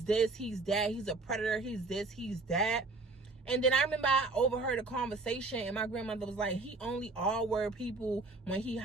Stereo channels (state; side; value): quieter; left; 3.6 dB